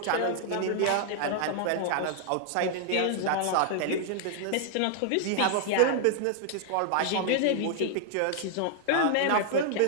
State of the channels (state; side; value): different; both; correlation -0.01